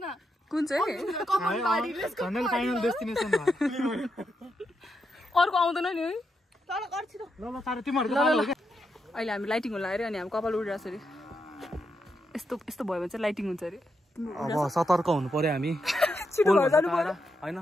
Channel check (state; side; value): normal; both; correlation 0.83